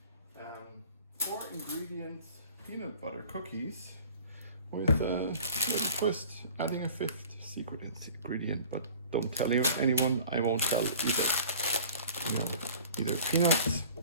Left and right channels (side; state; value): both; inverted; correlation -0.46